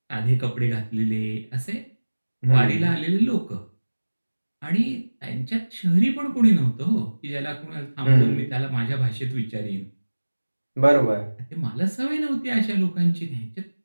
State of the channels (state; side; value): inverted; both; correlation -1.00